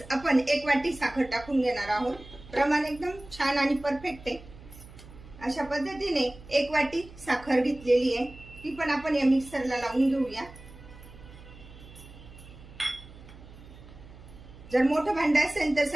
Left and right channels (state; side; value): noise; right; hum, 19 dB below the sound